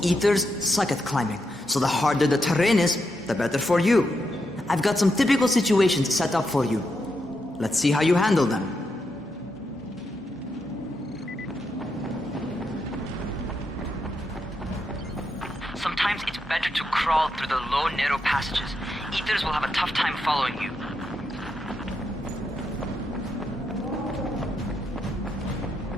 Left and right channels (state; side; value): normal; both; correlation 0.82